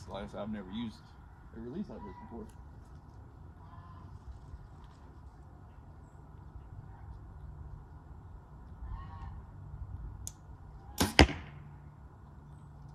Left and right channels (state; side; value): identical; both; correlation 1.00